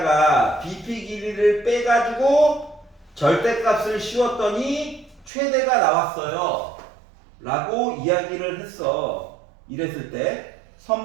BP 길이를 빼가지고 절대값을 씌웠더니 최대가 나왔어요. 라고 이야기를 했어. 이랬을 때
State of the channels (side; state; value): left; drops out; at 5.3 s